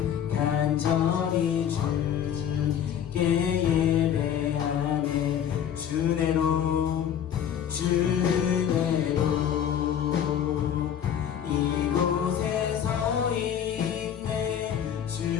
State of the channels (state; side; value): quieter; right; 9.2 dB